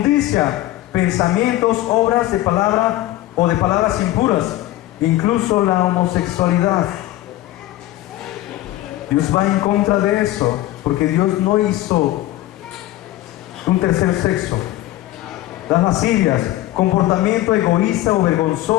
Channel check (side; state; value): right; quieter; 15.5 dB